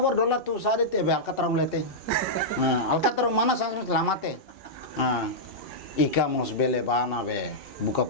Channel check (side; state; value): both; normal; correlation -0.10